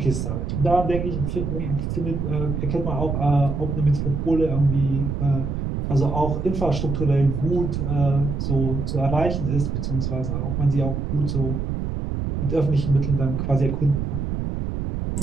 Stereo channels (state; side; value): noise; right; rumble, 2 dB below the sound